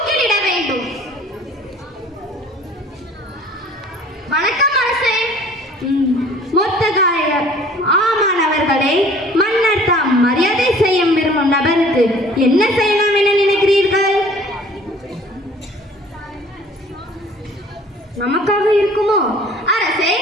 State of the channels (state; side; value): normal; both; correlation 0.51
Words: மொர்தெகாய் ஆமான் அவர்களே, மன்னர் தாம் மரியாதை செய்ய விரும்பும் நபருக்கு என்ன செய்யலாம் என நினைக்கிறீர்கள்? நமக்காக இருக்குமோ? அரசே,